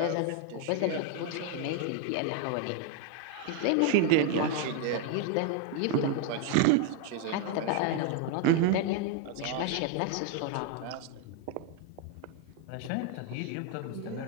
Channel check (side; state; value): both; different; correlation 0.01